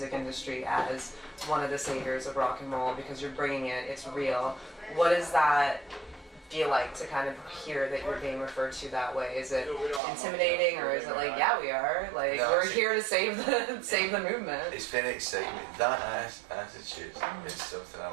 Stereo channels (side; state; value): left; drops out; at 10.0 s